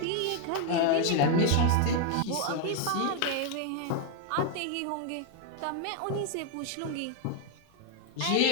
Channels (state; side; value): different; both; correlation 0.01